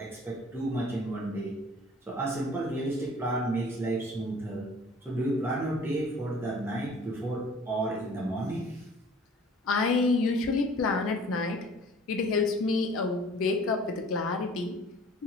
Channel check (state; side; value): normal; both; correlation 0.50